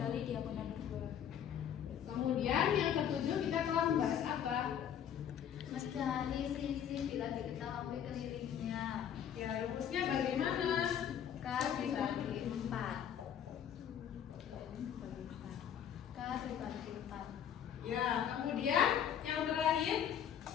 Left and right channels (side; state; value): right; quieter; 9.2 dB